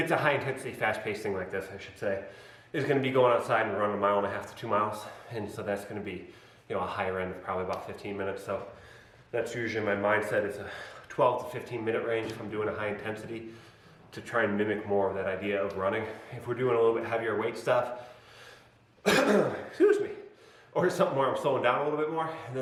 a high intensity, fast paced thing like this, I should say, is going to be going outside and running 1.5 miles to 2 miles. And so that's going to be, you know, a higher end of probably about 15 minutes. So that's usually my mindset, is a 12 to 15 minute range if I'm doing a high intensity, to try and mimic more of that idea of running. If we're doing a little bit heavier weight stuff, excuse me, or something where I'm slowing down a little bit more, and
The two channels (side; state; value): both; identical; correlation 1.00